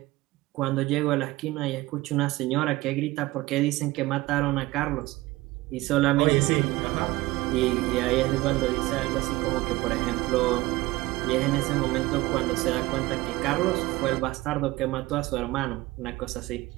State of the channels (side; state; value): left; quieter; 19.5 dB